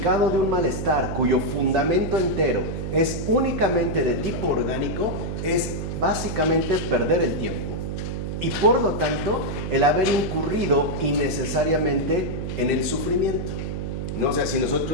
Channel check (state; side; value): noise; right; hum, 4 dB below the sound